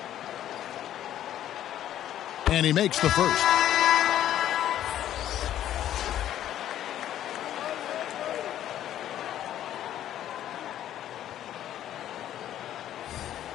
And he makes the first.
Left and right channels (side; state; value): right; quieter; 11.7 dB